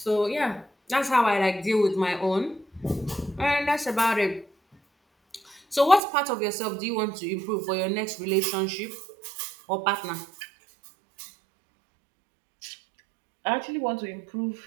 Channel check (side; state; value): left; drops out; at 6.0 s